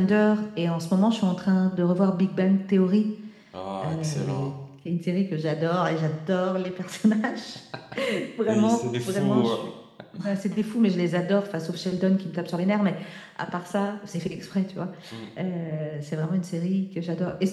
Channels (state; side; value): identical; both; correlation 1.00